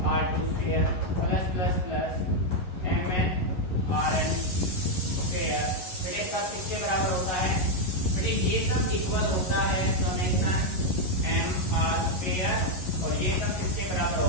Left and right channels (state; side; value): late; right; 11 ms